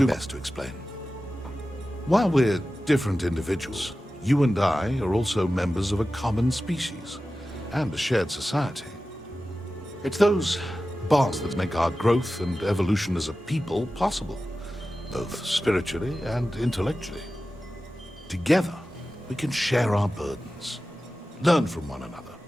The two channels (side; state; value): both; normal; correlation 0.94